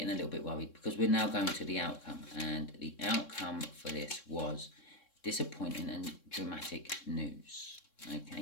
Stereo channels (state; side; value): late; right; 3.6 ms